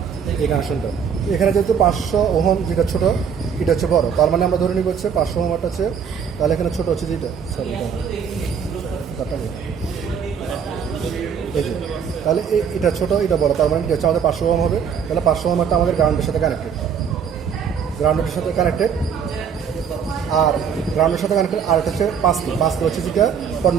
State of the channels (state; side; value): quieter; left; 7.2 dB